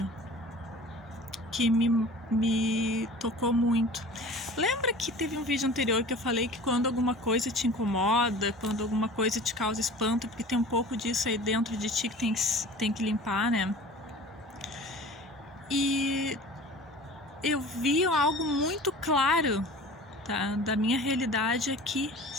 que me tocou muito. Lembra que teve um vídeo anterior que eu falei que quando alguma coisa te incomoda, quando alguma coisa te causa espanto, porque tem um pouco disso aí dentro de ti que tem que limpar, né? E eu vi algo muito claro, tá, da minha realidade aqui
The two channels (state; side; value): normal; both; correlation 0.41